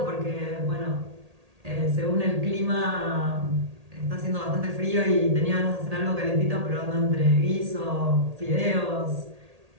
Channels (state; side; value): late; left; 1.8 ms